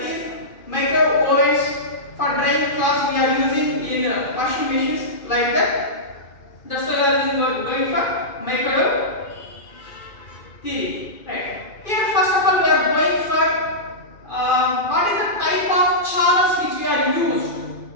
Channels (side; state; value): right; late; 2.4 ms